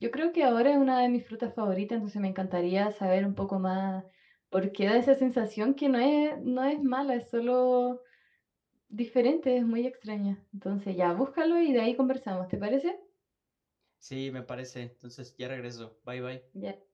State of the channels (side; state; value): both; identical; correlation 1.00